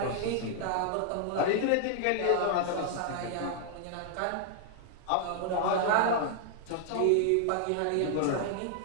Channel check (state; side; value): different; both; correlation -0.01